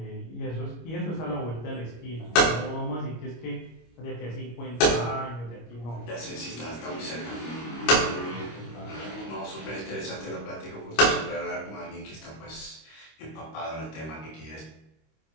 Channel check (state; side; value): late; right; 25 ms